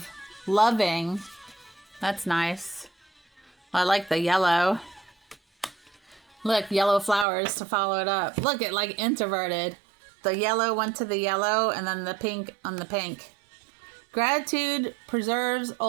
loving. That's nice. I like the yellow. Look, yellow flowers to follow it up. Look, it like introverted. The yellow went to the yellow and then the pink on the pink. Gratitude preserves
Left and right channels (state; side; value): drops out; left; at 7.2 s